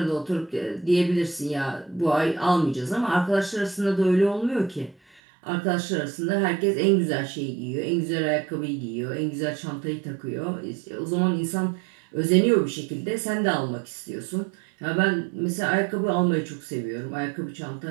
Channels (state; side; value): drops out; left; at 5.2 s